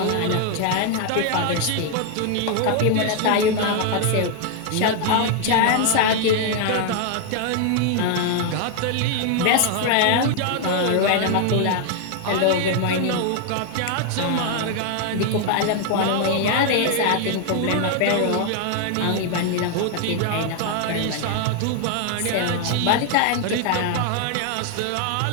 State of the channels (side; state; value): both; different; correlation 0.00